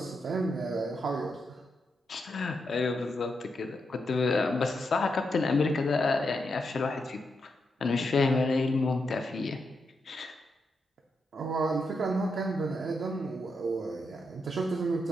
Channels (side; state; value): both; normal; correlation 0.84